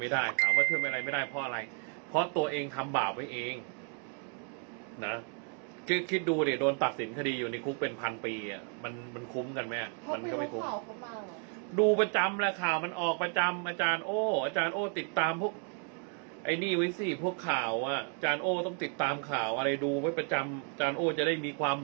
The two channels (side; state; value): left; quieter; 38.3 dB